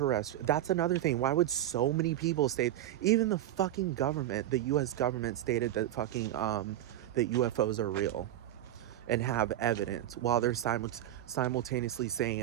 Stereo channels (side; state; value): left; quieter; 12.8 dB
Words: That's another thing. Why would so many people state, even the fucking government, the US government stated that fucking, that UFOs are real and have evidence, while they're simultaneously saying